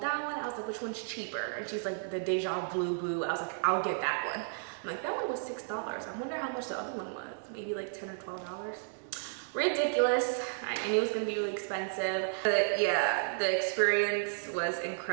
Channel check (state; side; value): silent; left; digital silence